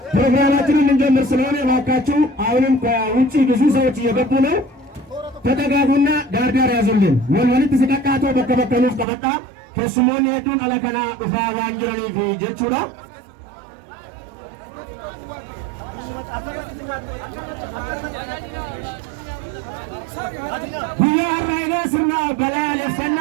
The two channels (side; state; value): left; drops out; at 9.1 s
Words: ፕሮግራማችንን እንጀምር ስለሆነ እባካችሁ አሁንም ከውጪ ብዙ ሰዎች እየገቡ ነው። ተጠጋጉና ዳርዳር ያዙልን። ወልወልት ሲቀቃቶ በከበከኑፍ ቀበጣ ከስሞን ሄዱን አለከና ኡፋ ዋንጅረኒ ጀቹራ Biyyaa Raayyaa sirna balaa